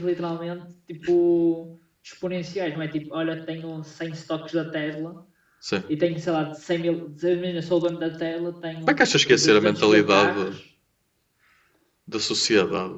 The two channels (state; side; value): identical; both; correlation 1.00